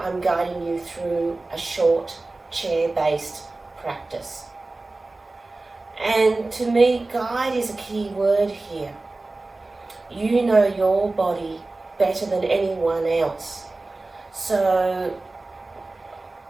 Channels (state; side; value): quieter; left; 3.2 dB